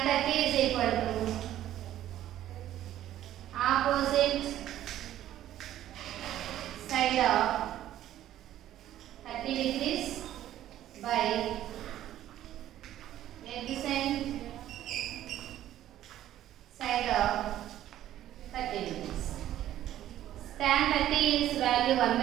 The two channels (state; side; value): quieter; left; 12.6 dB